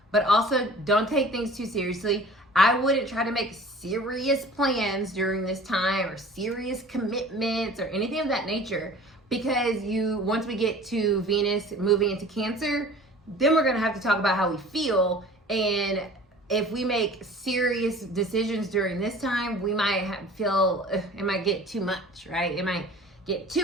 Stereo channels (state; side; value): normal; both; correlation 0.45